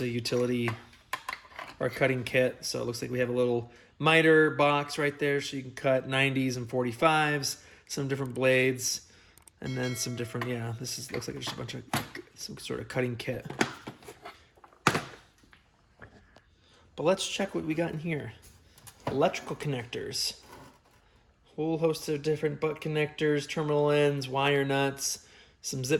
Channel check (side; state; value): both; identical; correlation 1.00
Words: a utility or cutting kit. So it looks like we have a little miter box right there so you can cut 90s and 45s, some different blades, and then some different, yeah, looks like just a bunch of some sort of cutting kit. But let's check what we got in here. Electrical connectors. Whole host of different butt connectors, terminal ends, wire nuts, some